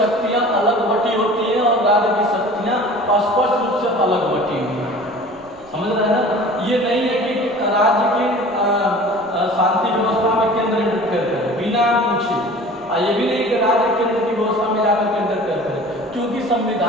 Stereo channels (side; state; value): right; noise; rumble, 30 dB below the sound